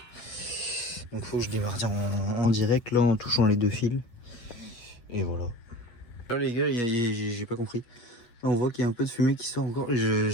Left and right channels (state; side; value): late; right; 8.6 ms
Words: Donc faut que je démarre en direct là en touchant les 2 fils. Et voilà. Là les gars, j'ai pas compris. Là on voit qu'il y a un peu de fumée qui sort encore.